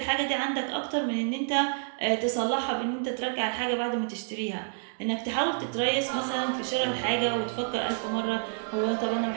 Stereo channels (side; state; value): left; silent; digital silence